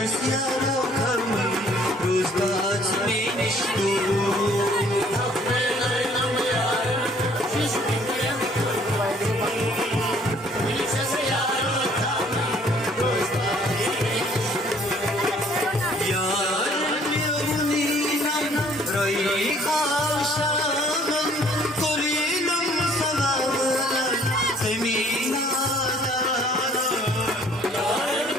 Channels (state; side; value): normal; both; correlation 0.59